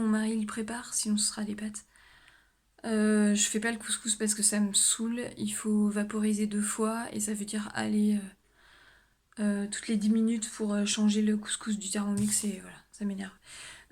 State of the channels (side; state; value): both; identical; correlation 1.00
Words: mari le prépare, sinon ce sera des pâtes. Je fais pas le couscous parce que ça me saoule. Il faut vaporiser 2 fois et ça veut dire aller toutes les 10 minutes pour changer le couscous du Thermomix et voilà, ça m'énerve.